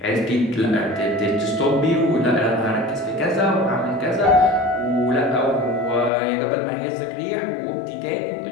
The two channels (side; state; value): right; drops out; at 6.1 s